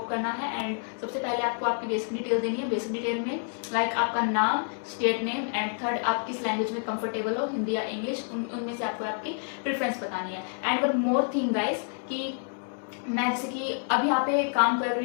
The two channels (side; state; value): right; silent; 59 dB below the other